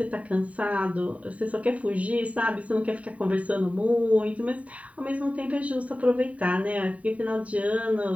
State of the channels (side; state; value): left; late; 0.067 ms